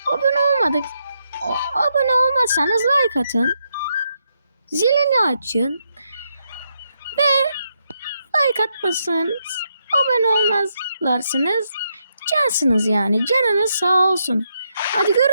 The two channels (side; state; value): both; inverted; correlation -0.80